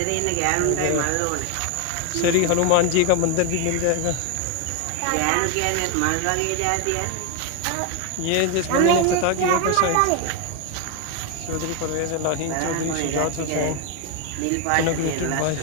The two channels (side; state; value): both; different; correlation 0.01